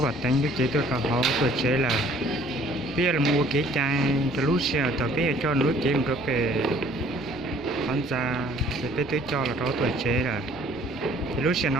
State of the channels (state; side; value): normal; both; correlation 0.56